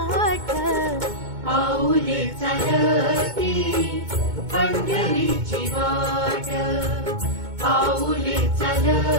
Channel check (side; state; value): left; late; 2.2 ms